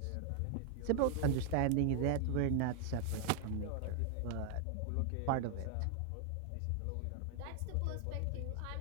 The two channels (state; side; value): different; both; correlation 0.00